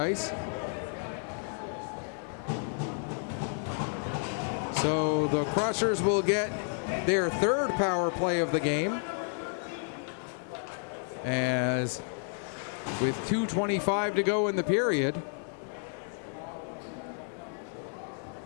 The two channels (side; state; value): right; silent; 57 dB below the other